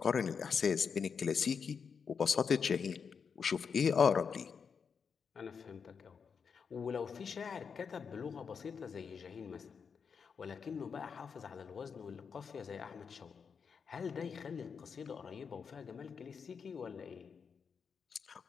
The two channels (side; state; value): right; quieter; 6.2 dB